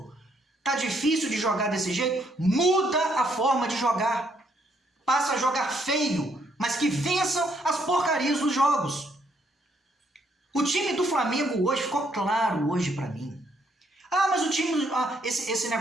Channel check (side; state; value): both; normal; correlation 0.71